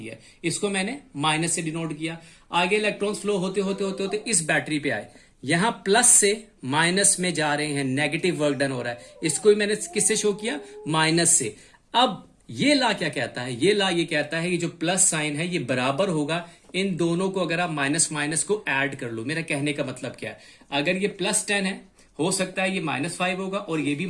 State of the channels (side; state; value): both; identical; correlation 1.00